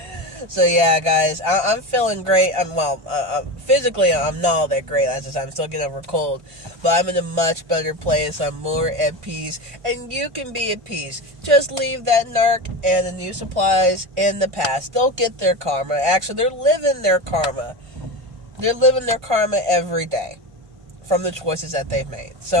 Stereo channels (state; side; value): late; left; 1.5 ms